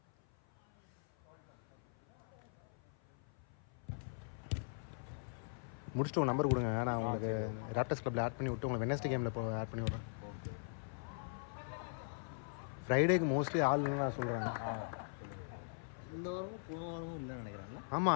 முடிச்சுட்டு உங்கள் நம்பர் கொடுங்க, நான் உங்களுக்கு ராப்டர்ஸ் கிளப்பில் ஆட் பண்ணி விட்டு உங்களை வெனஸ்டே கேமில் இப்போ ஆட் பண்ணி விட்றேன். ஃப்ரைடேக்கு மோஸ்ட்லி ஆள் இல்லைன்னு நான் சொல்கிறேன். இந்த வாரமும் போன வாரமும் இல்லைன்னு நினைக்கிறாங்களா?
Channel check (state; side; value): silent; right; 51 dB below the other